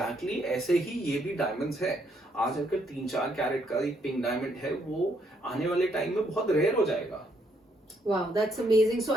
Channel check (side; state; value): both; normal; correlation 0.72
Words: ऐसे ही ये भी diamonds है. आज अगर 3-4 कैरेट का एक पिंक डायमंड है, वो आने वाले टाइम में बहुत रेयर हो जाएगा. Wow, that's amazing. So,